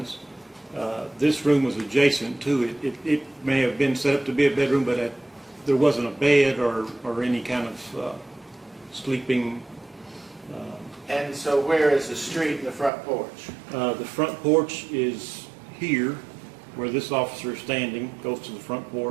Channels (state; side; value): drops out; left; at 12.9 s